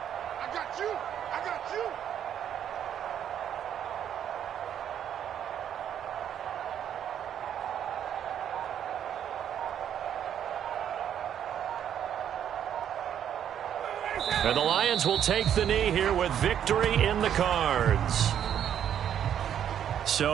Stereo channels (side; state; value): left; quieter; 9.5 dB